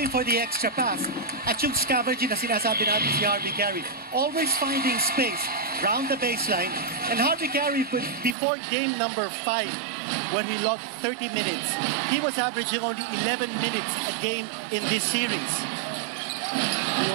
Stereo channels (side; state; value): left; drops out; at 8.3 s